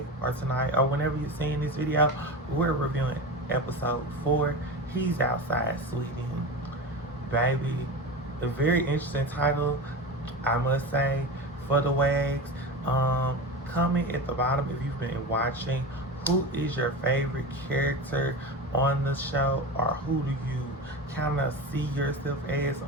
or tonight, or whenever you're seeing this video, we're reviewing episode 4. He's outside, sweetie. Baby, a very interesting title, I must say, for the Wags. Comment at the bottom if you've been watching. Who is your favorite character on the show, or who do you kind of see yourself as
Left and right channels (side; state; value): both; normal; correlation 0.26